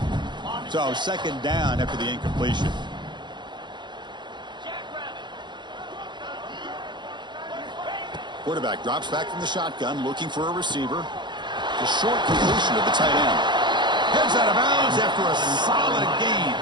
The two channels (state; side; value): late; left; 0.22 ms